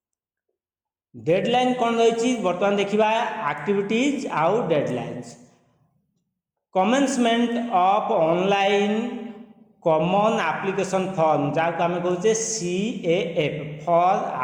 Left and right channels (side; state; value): both; identical; correlation 1.00